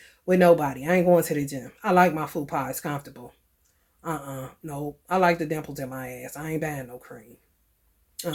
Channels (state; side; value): identical; both; correlation 1.00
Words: with nobody. I ain't going to the gym. I like my food pie. It's comfortable. No. I like the dimples in my ass. I ain't buying no cream.